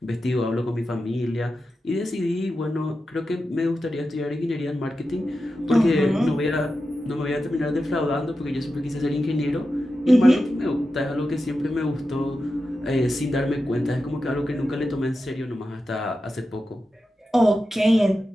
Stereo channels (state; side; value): normal; both; correlation 0.91